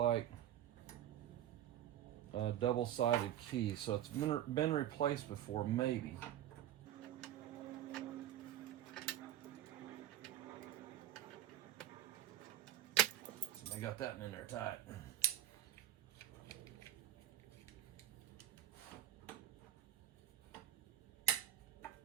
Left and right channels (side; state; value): left; quieter; 12.3 dB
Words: a double-sided key, so it's been replaced before, maybe. I got that in there tight.